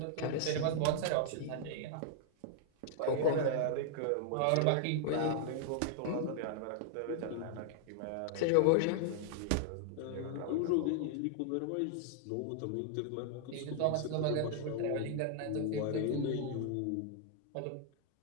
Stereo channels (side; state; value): both; different; correlation -0.01